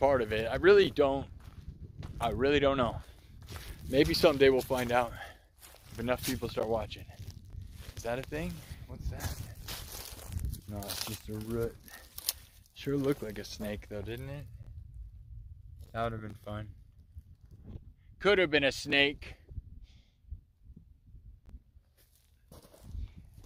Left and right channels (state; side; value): identical; both; correlation 1.00